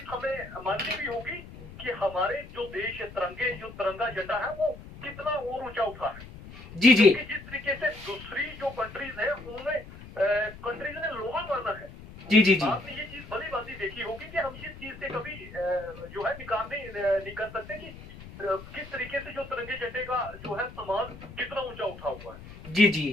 हमें माननी भी होगी कि हमारे जो देश जो तिरंगा झंडा है वो कितना और ऊंचा उठा है। जी जी, जिस तरीके से दूसरी जो कंट्रीज है उन्होंने कंट्रीज ने लोहा माना है। जी जी जी, आपने ये चीज भली भांति देखी होगी कि हम इस चीज से कभी जो है निकाल नहीं कर सकते कि किस तरीके से जो तिरंगे झंडे का जो है सम्मान कितना ऊंचा उठा हुआ है। जी जी,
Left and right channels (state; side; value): noise; left; rumble, 16 dB below the sound